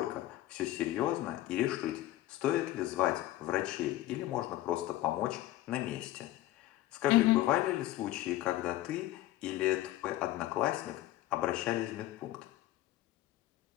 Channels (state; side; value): quieter; right; 15.2 dB